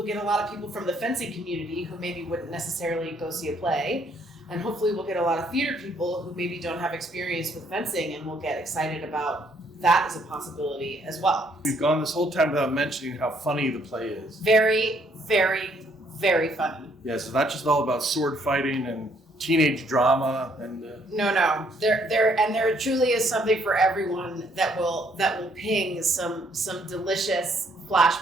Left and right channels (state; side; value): normal; both; correlation 0.67